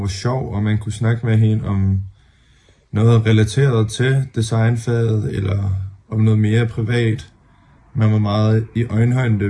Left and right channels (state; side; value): identical; both; correlation 1.00